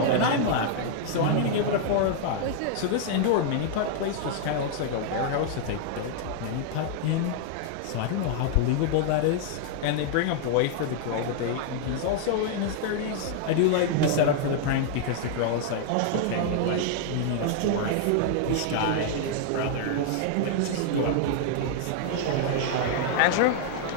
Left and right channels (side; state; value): both; different; correlation -0.01